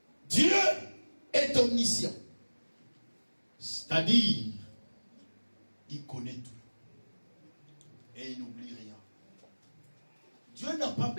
Dieu est omniscient. C'est-à-dire, il connaît tout. Et il n'oublie rien. Dieu n'a pas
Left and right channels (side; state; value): both; inverted; correlation -1.00